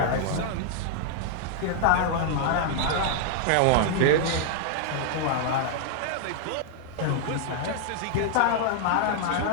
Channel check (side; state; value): both; different; correlation -0.01